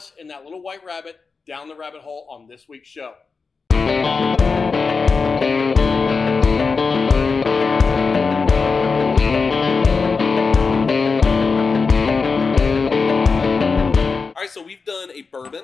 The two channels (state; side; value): quieter; right; 4.7 dB